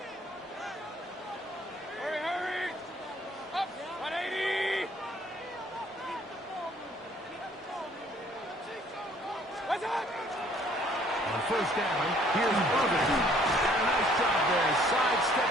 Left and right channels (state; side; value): normal; both; correlation 0.60